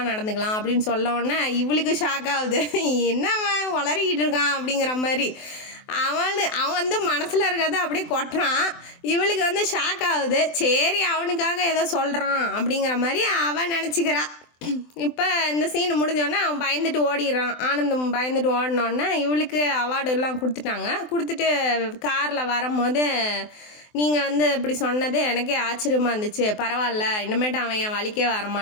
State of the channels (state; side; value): late; right; 24 ms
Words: நடந்துக்கலாம் அப்படின்னு சொல்லவுடனே இவளுக்கு ஷாக் ஆகுது. என்னவன் வளரிக்கிட்டு இருக்கான் அப்படிங்கிற மாதிரி. அவன் வந்து மனசில் இருக்கிறத அப்படியே கொட்டுறான். இவளுக்கு வந்து ஷாக் ஆகுது. சரி அவனுக்காக ஏதோ சொல்கிறான் அப்படிங்கிற மாதிரி அவன் நினச்சிக்கிறா. இப்போ இந்த சீன் முடிஞ்சோடனே அவன் பயந்துட்டு ஓடிடுறான். ஆனந்தம் பயந்துட்டு ஓடினோடனே இவளுக்கு அவார்டு எல்லாம் கொடுத்துட்டு காரில் வரும்போது நீங்கள் வந்து இப்படி சொன்னது எனக்கே ஆச்சரியமாக இருந்துச்சு. பரவாயில்ல, இனிமேட்டு அவன் என் வழிக்கே